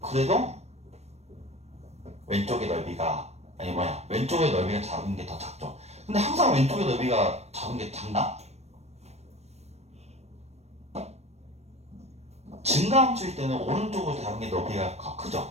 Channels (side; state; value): left; late; 0.31 ms